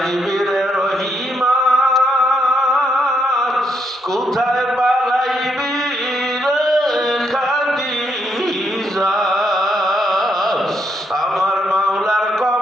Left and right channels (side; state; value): both; normal; correlation 0.77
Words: রে রহিমান, কোথায় পালাইবি রে খাদিজা। আমার মাওলার